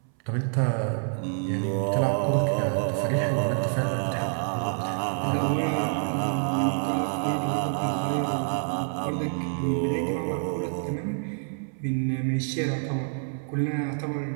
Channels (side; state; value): left; silent; 60 dB below the other